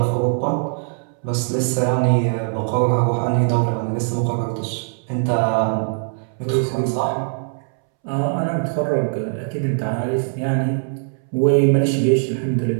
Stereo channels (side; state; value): left; silent; 65 dB below the other